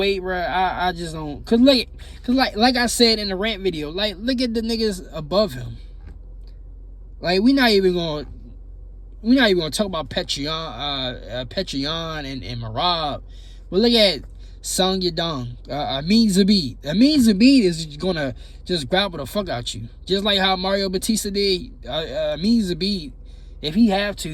bro. I just don't. Cause like I said in the rant video, like look at the niggas above him. Like we not even gonna talk about Petrion and Marab. But look at Sung Yadong, Amin Zabid. Amin Zabid is gonna just grapple the fuck out you, just like how Mario Batista did. Amin Zabid, if he have to,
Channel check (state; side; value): identical; both; correlation 1.00